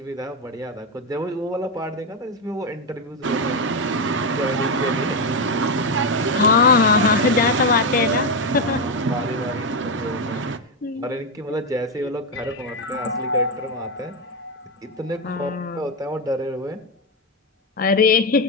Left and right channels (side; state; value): both; normal; correlation 0.07